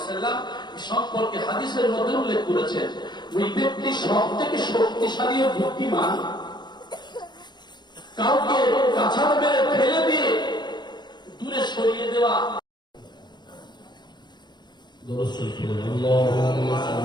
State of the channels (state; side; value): late; right; 0.21 ms